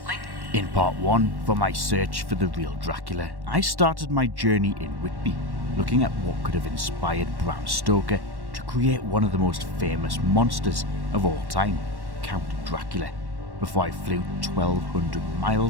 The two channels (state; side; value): late; left; 1.1 ms